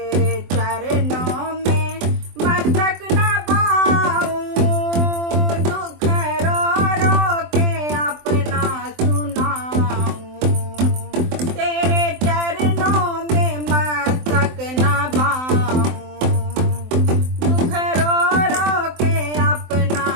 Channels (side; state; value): left; late; 23 ms